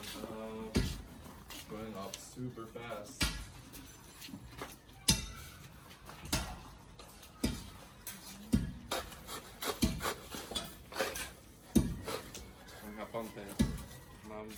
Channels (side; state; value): both; identical; correlation 1.00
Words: going up super fast. Ang haponte. Ma'am,